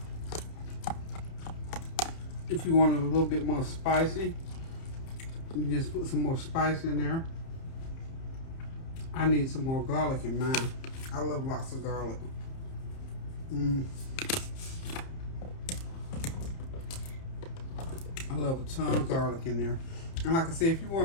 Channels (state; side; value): late; right; 30 ms